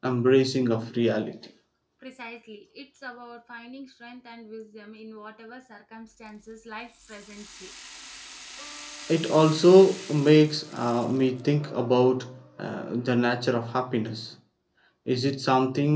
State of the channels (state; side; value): identical; both; correlation 1.00